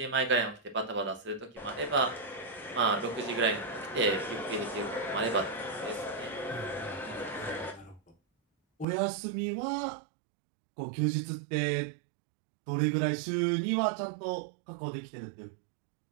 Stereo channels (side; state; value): left; drops out; at 8.8 s